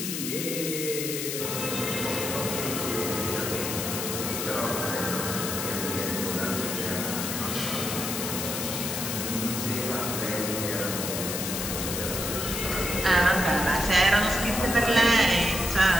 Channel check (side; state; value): left; noise; hiss, 3 dB below the sound